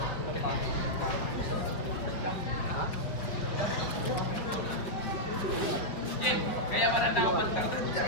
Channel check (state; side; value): late; right; 5.6 ms